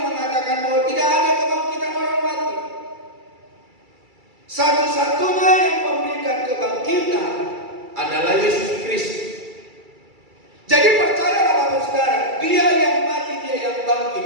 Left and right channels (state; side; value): late; left; 2.3 ms